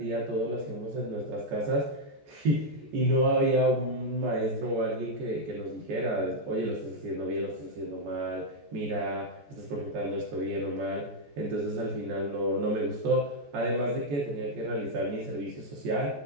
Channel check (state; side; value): late; left; 14 ms